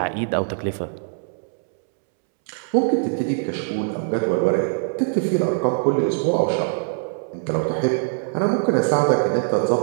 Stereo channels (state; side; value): silent; left; 64 dB below the other